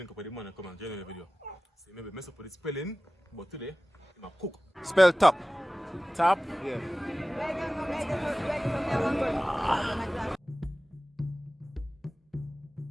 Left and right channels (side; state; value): both; normal; correlation 0.97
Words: up with the man and come and join the video. So maybe mess up with the spelling, but today, I'm a cook. Spell top. Top? Yeah.